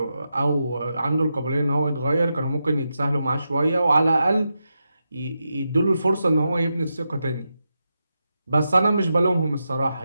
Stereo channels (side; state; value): both; inverted; correlation -0.87